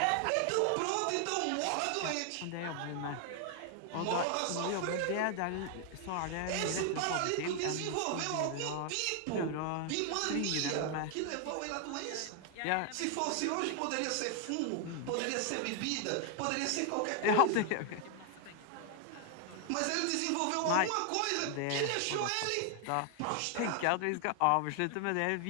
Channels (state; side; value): different; both; correlation 0.00